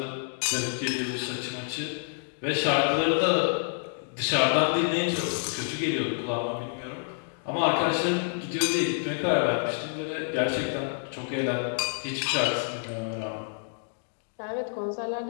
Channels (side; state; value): right; silent; digital silence